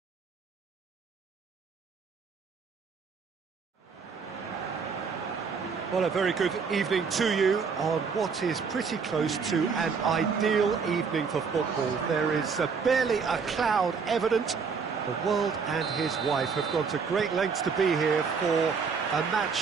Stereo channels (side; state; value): left; quieter; 5.6 dB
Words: Well, a very good evening to you on what is pretty close to an ideal evening for football. There is barely a cloud evident. The world and his wife have gone to great lengths to be here for a